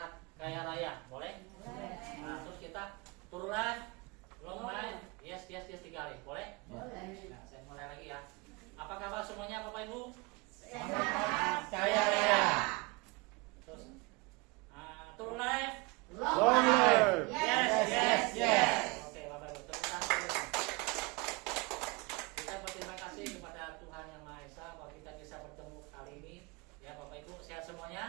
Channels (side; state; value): left; quieter; 26.7 dB